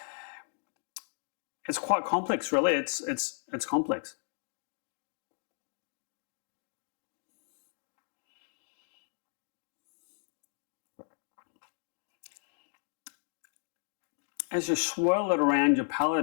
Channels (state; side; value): silent; right; 55 dB below the other